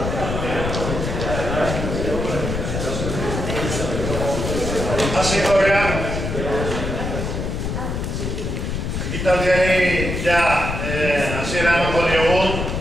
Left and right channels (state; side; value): noise; left; rumble, 3 dB below the sound